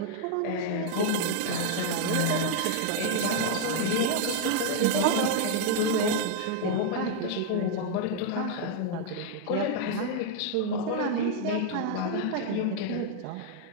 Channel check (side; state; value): both; different; correlation 0.00